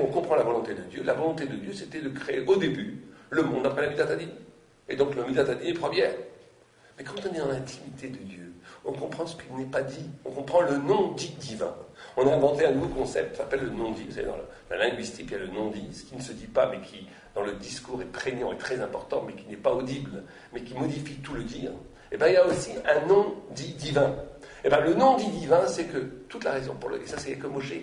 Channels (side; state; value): both; identical; correlation 1.00